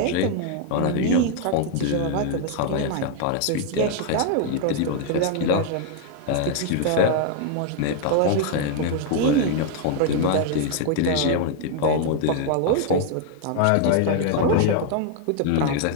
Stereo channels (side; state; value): both; different; correlation 0.00